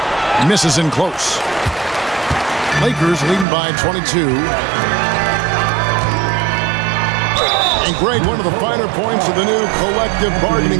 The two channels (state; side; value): drops out; left; at 3.5 s